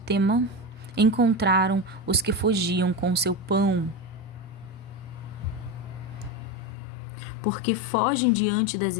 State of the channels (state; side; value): drops out; right; at 6.7 s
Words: encontraram os que fugiam com seu pão. Porque fogem diante das